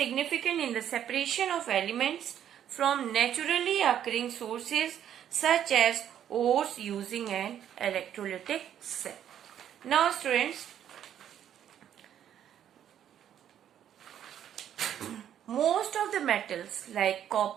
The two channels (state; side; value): quieter; left; 10.1 dB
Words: in the separation of elements from naturally occurring sources such as ores using an electrolytic cell. Now students, most of the metals like